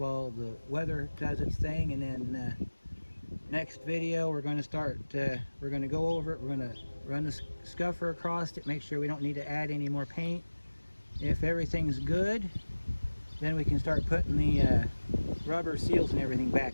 the weather does its thing, and then next video we're going to start we're going to go over it. We're going to run the scuffer across it, make sure we don't need to add any more paint. If everything's good, then we can start putting the rubber seals and everything back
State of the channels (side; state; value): both; inverted; correlation -1.00